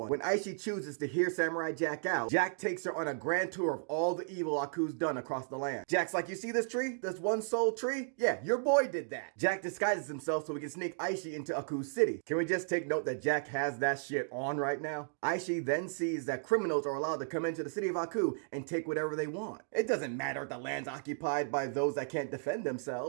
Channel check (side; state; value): left; silent; digital silence